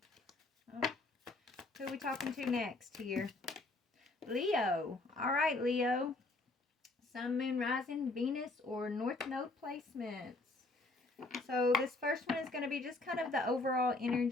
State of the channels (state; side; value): quieter; right; 3.0 dB